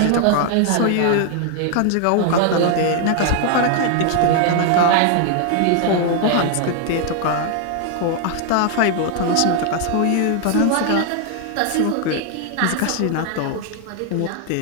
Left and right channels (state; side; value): different; both; correlation 0.00